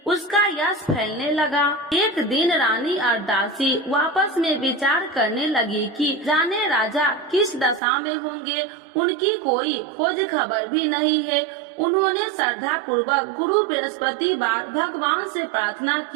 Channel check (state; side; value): drops out; left; at 7.8 s